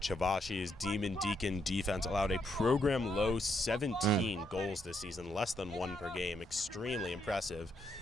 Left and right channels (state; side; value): normal; both; correlation 0.76